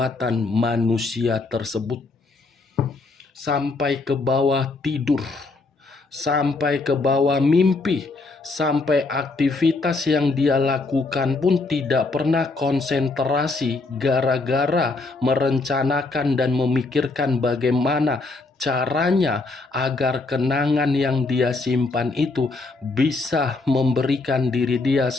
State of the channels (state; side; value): quieter; right; 3.5 dB